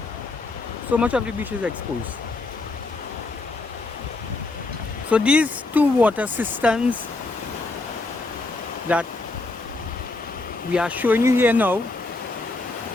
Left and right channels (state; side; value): quieter; right; 3.2 dB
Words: So these two water cisterns that we are showing you here now